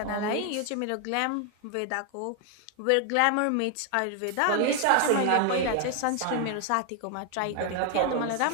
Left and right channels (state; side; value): different; both; correlation 0.00